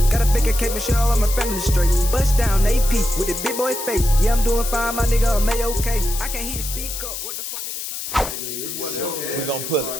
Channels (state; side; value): noise; left; hiss, 7 dB below the sound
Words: Got a bigger cake, make sure all of my family straight. Bust down AP with a big boy face. Yeah, I'm doing fine, my nigga, I'm okay. I can't hear you speak up. What the fuck, nigga, talking? We're gonna pull